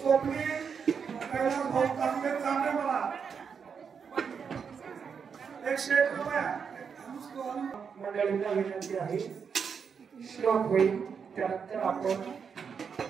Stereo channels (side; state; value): left; quieter; 6.4 dB